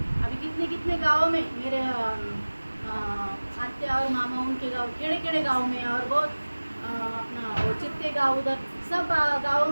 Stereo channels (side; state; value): both; inverted; correlation -1.00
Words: अभी कितने कितने गाँव में मेरे आत्या और मामा उनके गाँव केड़े केड़े गाँव में, और बहुत अपना वो चित्ते गाँव, उधर सब गाँव